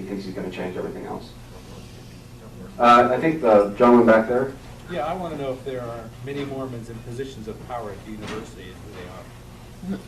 thinks he's going to change everything else. I think the gentleman back there. Yeah, I want to know if there are many Mormons in positions of power at the university and who they are.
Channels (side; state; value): both; identical; correlation 1.00